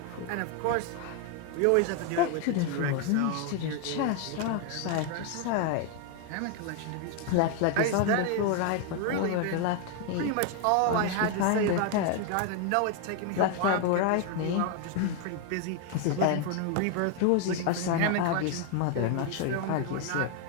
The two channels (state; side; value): different; both; correlation 0.01